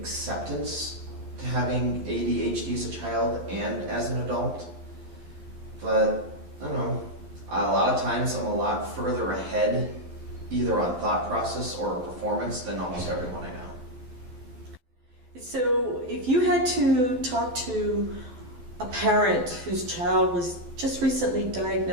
to having ADHD as a child and as an adult. But I don't know, a lot of times I'm a lot further ahead either on thought process or performance than almost everyone I know. So if you had to talk to a parent whose child was just recently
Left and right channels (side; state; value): left; late; 12 ms